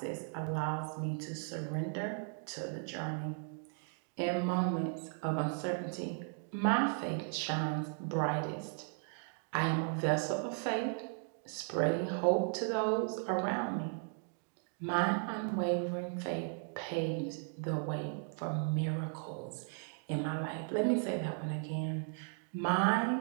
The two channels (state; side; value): silent; left; 54 dB below the other